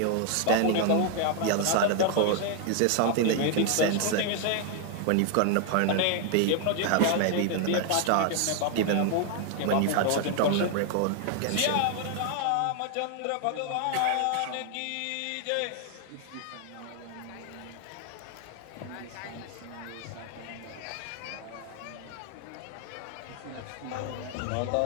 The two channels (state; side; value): different; both; correlation 0.00